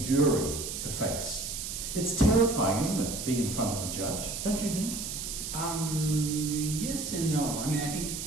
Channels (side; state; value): right; noise; hiss, 5 dB below the sound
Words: to face. It's terrifying, isn't it, being in front of a judge, don't you think? Yes and no. I mean,